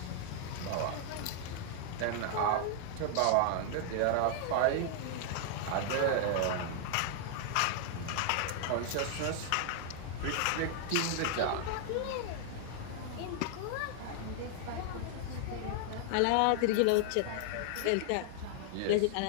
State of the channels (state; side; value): different; both; correlation 0.00